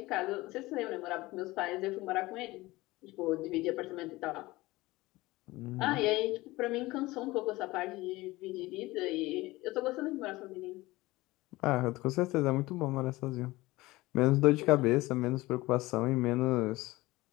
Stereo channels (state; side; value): quieter; right; 19.8 dB